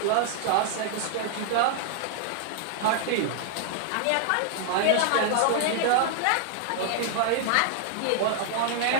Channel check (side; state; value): both; different; correlation 0.00